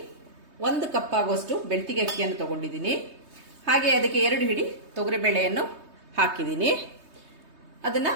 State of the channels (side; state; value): left; late; 3.2 ms